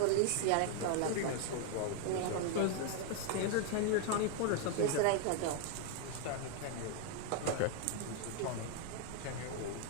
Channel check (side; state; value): both; different; correlation 0.01